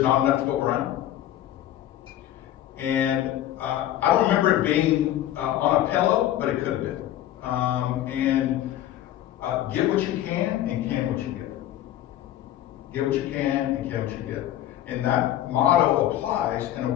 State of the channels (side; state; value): right; quieter; 12.8 dB